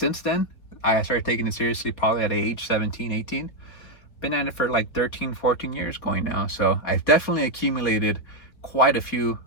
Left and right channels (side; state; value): right; late; 4.0 ms